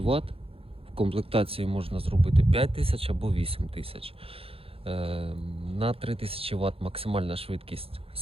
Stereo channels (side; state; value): left; late; 0.27 ms